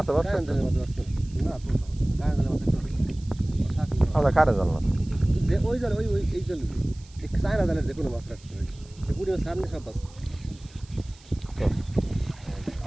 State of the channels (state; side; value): noise; right; hiss, 25 dB below the sound